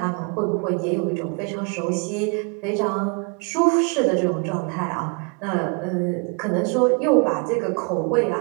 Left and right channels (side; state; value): left; quieter; 34.6 dB